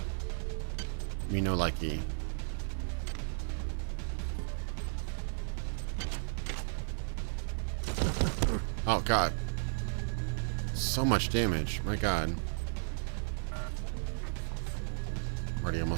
Me no likey. Oh god. So much damage. My god. I'm already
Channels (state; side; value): silent; left; digital silence